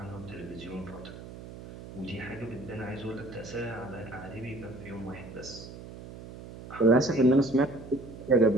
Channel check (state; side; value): noise; right; hum, 14 dB below the sound